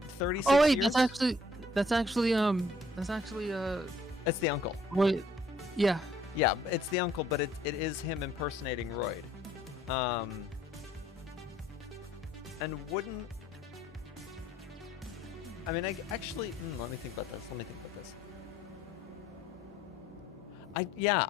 Oh wait, years? that's actually It's the uncle. Wait. Yeah. Yeah, it's the uncle, but it is him impersonating Royd. And wouldn't I mean, I actually let me think about this.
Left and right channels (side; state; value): both; normal; correlation 0.62